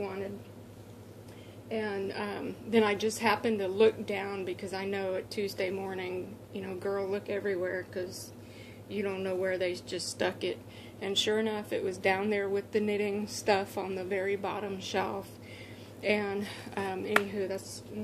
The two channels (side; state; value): both; identical; correlation 1.00